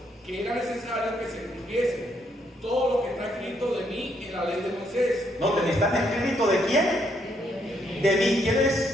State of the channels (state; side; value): normal; both; correlation 0.73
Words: que era necesario que se cumpliese todo lo que está escrito de mí en la ley de Moisés. Noten, ¿están escritos de quién? De mí. ¿Quién